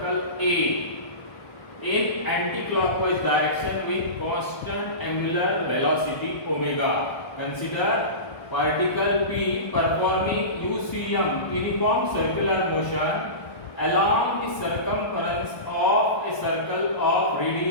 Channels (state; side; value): late; right; 1.3 ms